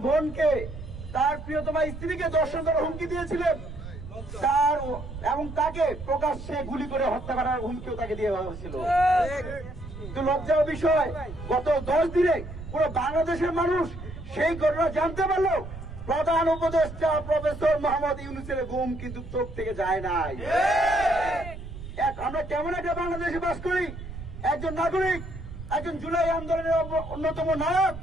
বোনকে, তার প্রিয়তমা স্ত্রীকে দর্শন করার হুমকি দিয়েছিলেন, তার এবং তাকে প্রকাশ্যে গুলি করে হত্যা করার হুমকিও তাকে দিয়ে হয়েছিল। তো লজ্জার বিষয়, গত 10 দিনে পুরো বাংলাদেশের মানুষ সেই ঘটনা জানতে পারলো। প্রধান উপদেষ্টা প্রফেসর মোহাম্মদ ইউনূসের ঘুম কিন্তু চোখ থেকে যায় নাই। আমরা কেমন একটা বাংলাদেশে বাস করি? একজন নাগরিক, একজন জুলাই আন্দোলনের অন্যতম নায়ক,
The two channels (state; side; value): noise; right; rumble, 11 dB below the sound